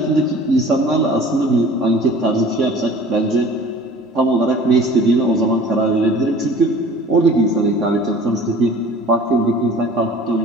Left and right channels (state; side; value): normal; both; correlation 0.46